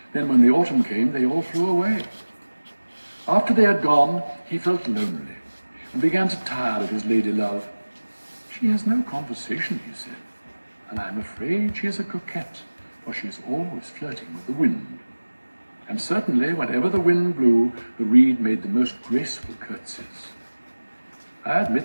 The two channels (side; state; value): both; inverted; correlation -1.00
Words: Then when the autumn came, they all flew away. After they had gone, he felt lonely and began to tire of his lady love. "She has no conversation," he said, "and I am afraid she is a coquette, for she is always flirting with the wind." And certainly, whenever the wind blew, the reed made the most graceful curtsies. "I